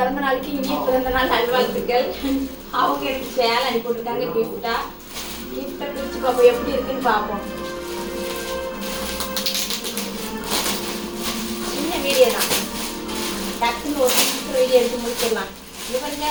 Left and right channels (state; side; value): identical; both; correlation 1.00